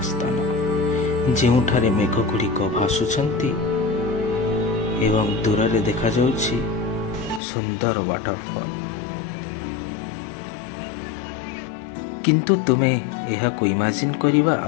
स्थान ଯେଉଁଠାରେ ମେଘଗୁଡ଼ିକ ଭାସୁଛନ୍ତି ଏବଂ ଦୂରରେ ଦେଖାଯାଉଛି ସୁନ୍ଦର ୱାଟରଫଲ୍। କିନ୍ତୁ ତୁମେ ଏହାକୁ ଇମାଜିନ୍ କରିବା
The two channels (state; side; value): drops out; right; at 7.4 s